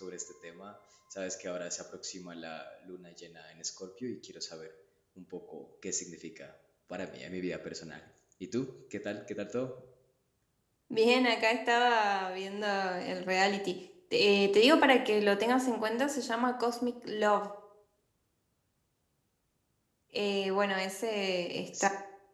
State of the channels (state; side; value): identical; both; correlation 1.00